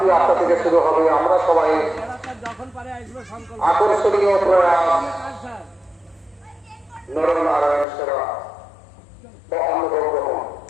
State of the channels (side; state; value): right; drops out; at 7.9 s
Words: 8টা থেকে শুরু হবে। আমরা সবাই যখন পারে আসবে সংকল্প আকর্ষণীয় প্রয়াস কাজ স্যার নরনারায়ণ সেবা বা অন্নভোগ গ্রহণ।